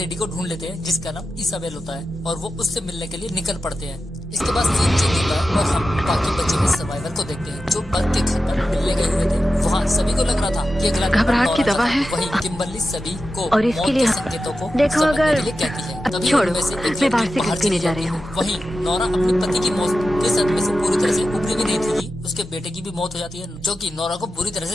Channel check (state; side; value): normal; both; correlation 0.91